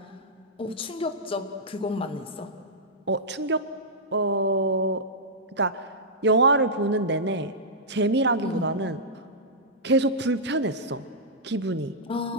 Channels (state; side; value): normal; both; correlation -0.12